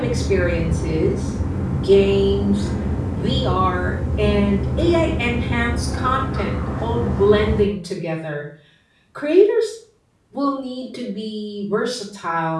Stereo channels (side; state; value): both; identical; correlation 1.00